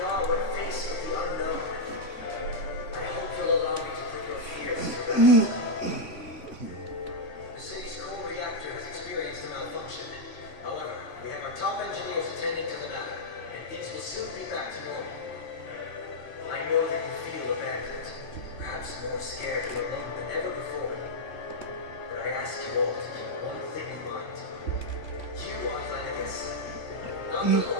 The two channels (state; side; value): late; right; 3.5 ms